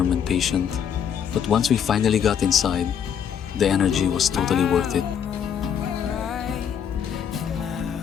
and patient. But once we finally got inside, the energy was totally worth it.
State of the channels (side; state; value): right; quieter; 8.3 dB